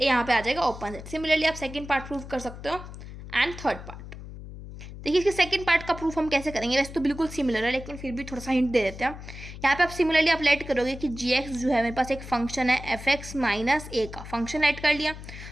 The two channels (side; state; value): left; noise; hum, 12 dB below the sound